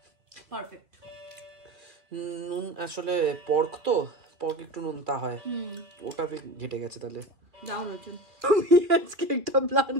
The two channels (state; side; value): late; left; 2.4 ms